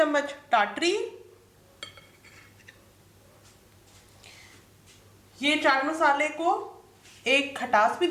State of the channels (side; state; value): both; identical; correlation 1.00